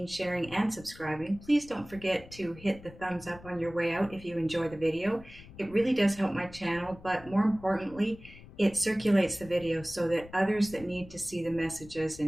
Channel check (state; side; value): noise; left; rumble, 19 dB below the sound